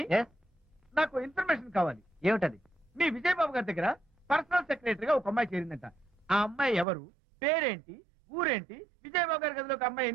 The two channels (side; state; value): left; drops out; at 6.9 s